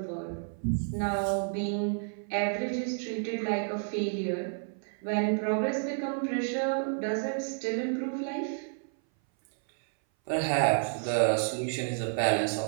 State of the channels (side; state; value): left; silent; 58 dB below the other